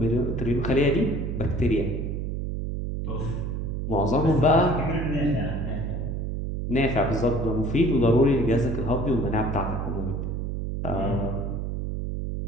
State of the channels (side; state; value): right; noise; hum, 3 dB below the sound